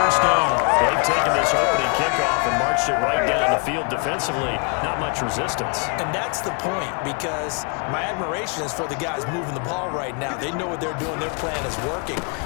down. They've taken this opening kickoff and marched it right down the field defensively. Not much resistance. And that's the point, because my admiration is for the guys moving the ball right now. They know what they're doing. Their plan is working.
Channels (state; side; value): quieter; right; 36.4 dB